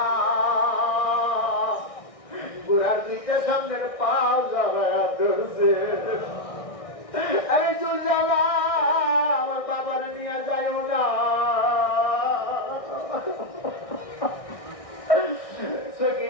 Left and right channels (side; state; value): right; late; 1.6 ms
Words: ঘোড়ার নিচে সামনের পাও জ্বালায়া ধরছে। আরে জুলজালা, আমার বাবার নিয়ে যাইও না।